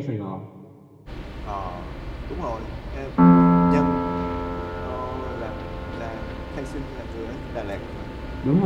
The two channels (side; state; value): both; identical; correlation 1.00